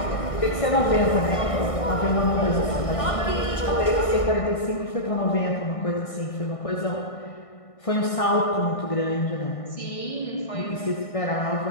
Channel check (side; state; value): right; late; 1.6 ms